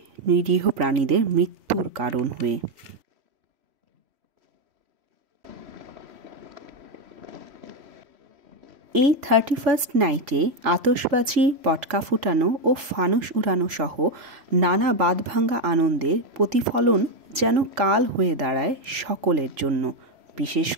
নিরীহ প্রাণীদের মৃত্যুর কারণ হয়ে। এই 31st নাইটে আতশবাজি, পটকা ফুটানো ও ফানুস উড়ানো সহ নানা বাঁধভাঙা আনন্দের প্রতিফলন যেন কাল হয়ে দাঁড়ায় সকলের জন্য। বিশেষ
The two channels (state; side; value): late; left; 3.5 ms